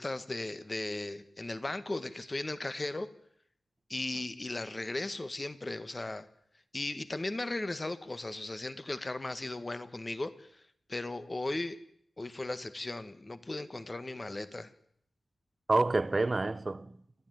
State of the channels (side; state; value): both; normal; correlation 0.96